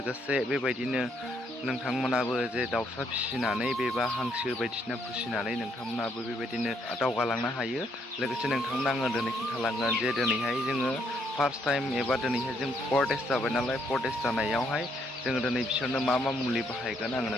बेबायदिनो नोंथांमोनाबो जे दाउसा फिसिनानै बेबा हांसो बायदिसिना फिसिनानै नोंथांमोनाबो बेबायदिनो दावगालांनो हायो। लोगोसे नोंथांमोना आङो दिनै खिन्थालांगोन जे दिनैहाय जोङो फार्स्ट टाइम एबा दिनैहाय जों 4 days जाबाय नालाय, 4 days जानायावहाय जोङो दिनै बिसोरनो मा मुलि बाहायगोन आङो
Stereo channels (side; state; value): both; normal; correlation 0.72